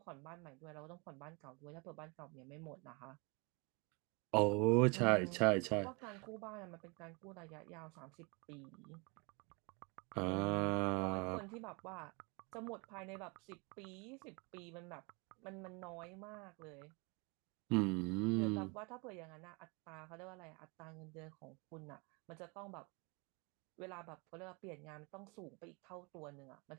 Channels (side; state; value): left; quieter; 30.4 dB